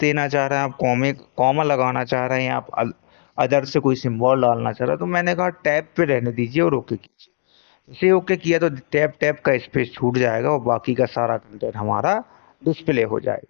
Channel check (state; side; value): silent; right; digital silence